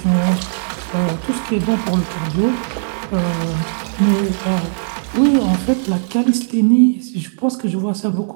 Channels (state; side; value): silent; left; digital silence